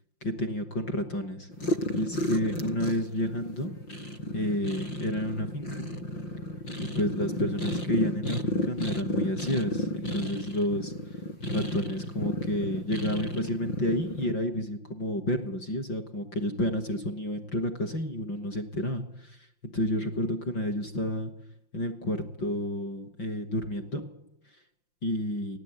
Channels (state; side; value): late; right; 5.7 ms